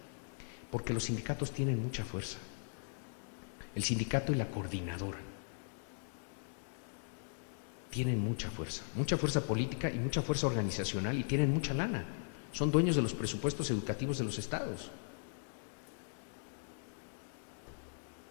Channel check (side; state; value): right; silent; digital silence